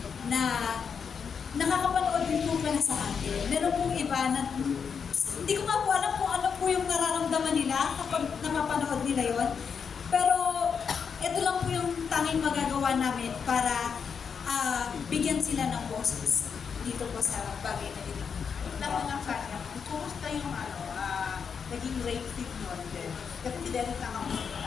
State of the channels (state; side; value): quieter; right; 6.4 dB